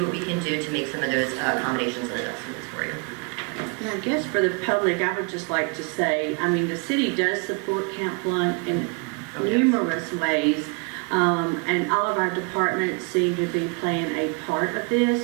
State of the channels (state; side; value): quieter; left; 34.2 dB